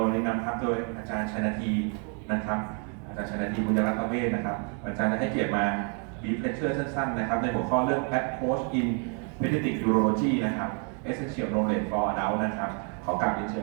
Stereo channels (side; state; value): left; quieter; 39.7 dB